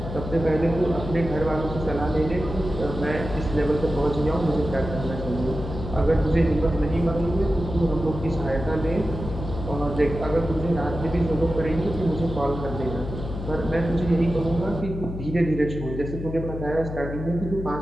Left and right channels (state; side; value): noise; left; hum, 7 dB below the sound